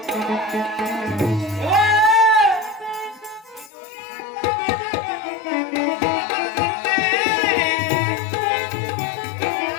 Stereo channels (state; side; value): drops out; right; at 3.7 s